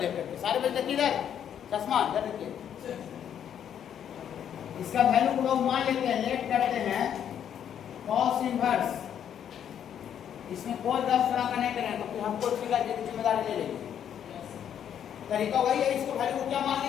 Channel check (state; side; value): quieter; right; 9.2 dB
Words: देख करके। सारे बच्चे किधर? चश्मा इधर देखिए। इसका वैल्यू को लोग मान लेते हैं, लेट करते हैं cos इनवर्स। इसमें कोई 10 तरह का नहीं करेंगे तो फिर हमको इसकी जिम्मेदारी ले लेंगे। तरीका वही है, इसको वैल्यू को क्या मान